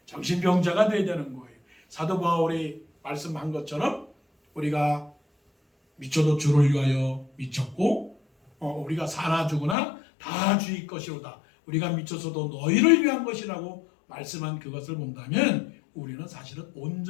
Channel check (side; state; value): right; drops out; at 9.8 s